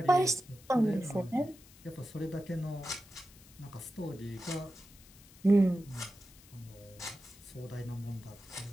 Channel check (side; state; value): left; noise; hiss, 23 dB below the sound